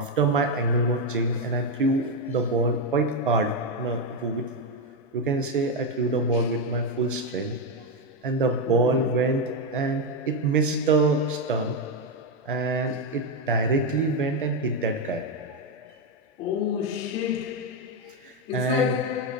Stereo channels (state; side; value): normal; both; correlation 0.06